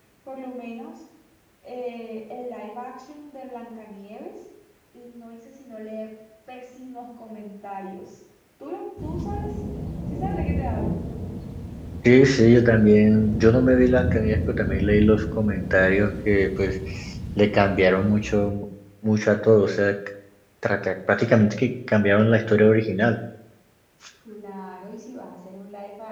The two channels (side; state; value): both; identical; correlation 1.00